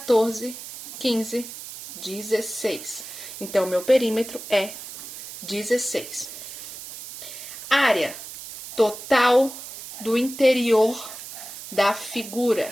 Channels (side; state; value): right; noise; hiss, 12 dB below the sound